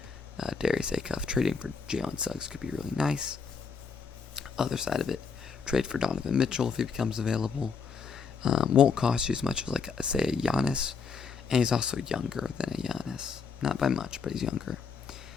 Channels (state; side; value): quieter; right; 5.6 dB